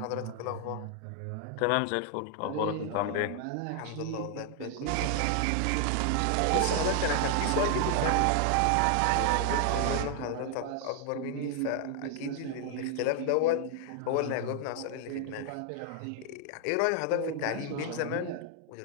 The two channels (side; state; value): both; different; correlation 0.00